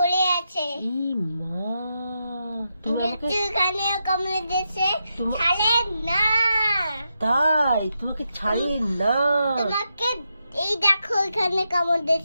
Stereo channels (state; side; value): inverted; both; correlation -0.85